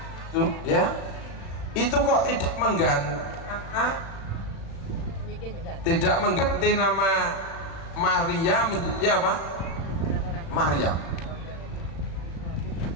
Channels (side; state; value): right; late; 36 ms